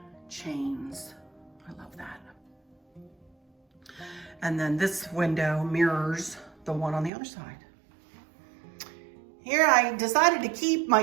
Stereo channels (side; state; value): left; drops out; at 7.1 s